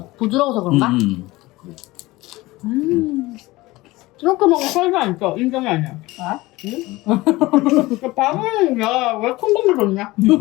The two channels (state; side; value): quieter; right; 19.9 dB